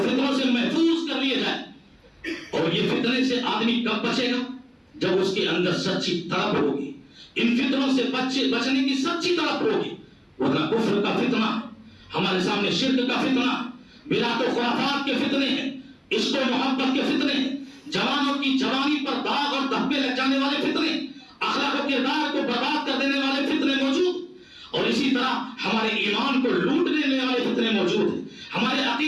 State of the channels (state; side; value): identical; both; correlation 1.00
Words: سے محفوظ کر لیے جائیں. اور یہ فتنے سے آدمی کب بچے گا؟ جب اس کے اندر سچی طلب ہوگی، ان فتنوں سے بچنے کی سچی طلب ہوگی. ورنہ کفر کا فتنہ، ہمارے سامنے شرک کا فتنہ، بدعت و خرافات کے فتنے ہیں، عشق و محبت کے فتنے ہیں، جوانوں کی جوانی پر داغ اور دھبے لگ جانے والے فتنے، اخلاق و کردار کو برباد کر دینے والے فتنے موجود، اور اسی طرح ہمارے ایمان کو لوٹ لینے والے فتنے موجود ہیں، ہمارے